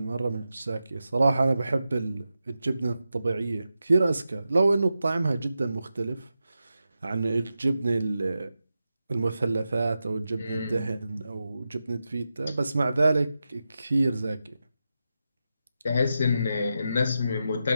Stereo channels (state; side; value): inverted; both; correlation -0.90